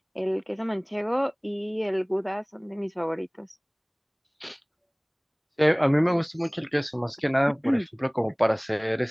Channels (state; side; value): identical; both; correlation 1.00